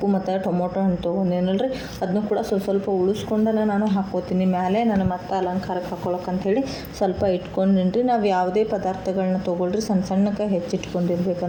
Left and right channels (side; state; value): both; identical; correlation 1.00